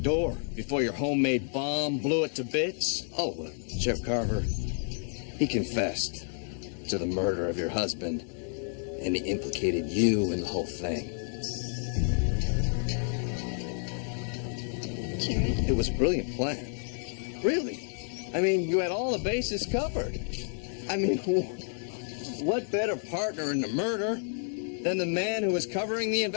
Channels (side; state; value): right; silent; 58 dB below the other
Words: door before your homemade bomb blew it to bits. Oh, Sheriff Carver, he confessed to the murder of your husband, and he implicated you in the whole thing. Jared? It was a brilliant plan. Really. I mean, you had all the bases covered. I mean, what better partner in the murder than the man who was covering the